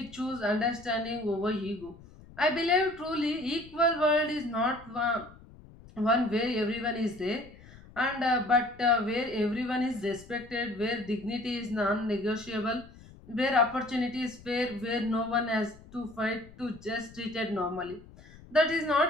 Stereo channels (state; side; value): noise; left; rumble, 21 dB below the sound